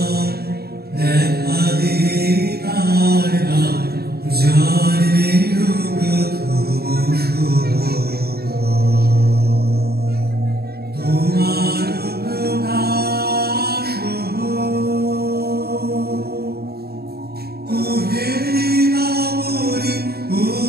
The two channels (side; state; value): left; late; 0.46 ms